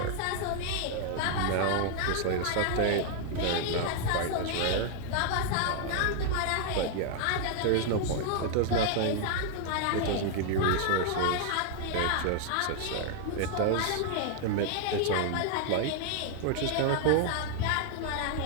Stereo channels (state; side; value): different; both; correlation 0.00